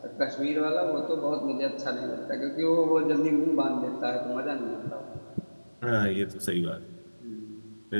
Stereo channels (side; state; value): both; inverted; correlation -1.00